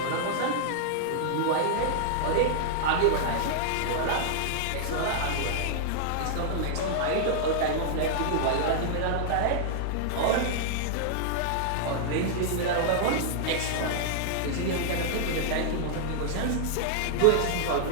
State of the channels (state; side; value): different; both; correlation -0.01